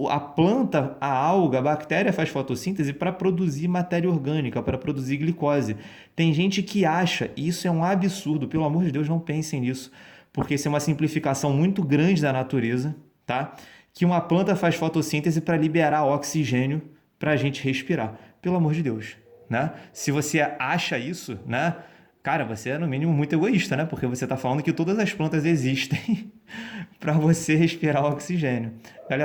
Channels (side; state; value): both; identical; correlation 1.00